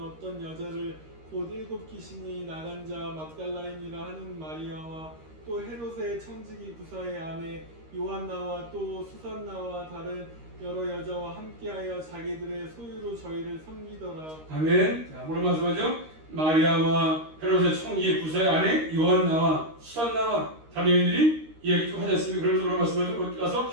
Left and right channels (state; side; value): late; left; 13 ms